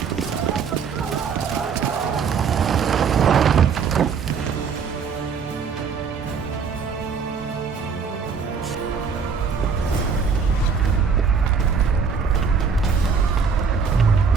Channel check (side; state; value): left; quieter; 5.8 dB